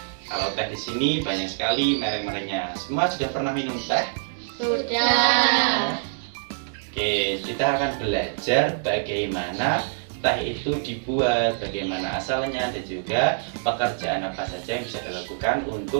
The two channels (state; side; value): silent; left; digital silence